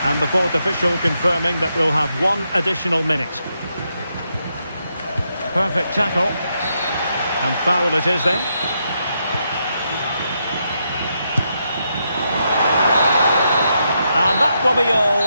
And the fourth official confirming that we'll have 1 additional minute. Perfect tackle. And foul it is then. And that will be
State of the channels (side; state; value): both; inverted; correlation -0.81